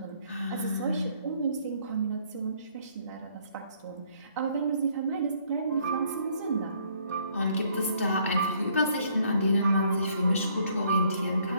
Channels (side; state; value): both; inverted; correlation -0.65